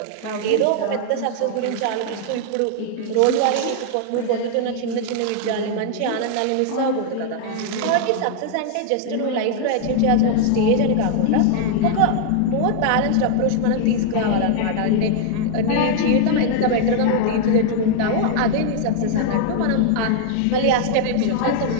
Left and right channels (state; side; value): different; both; correlation 0.00